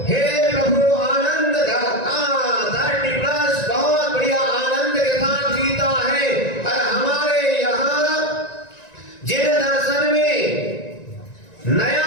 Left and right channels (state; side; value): late; right; 1.9 ms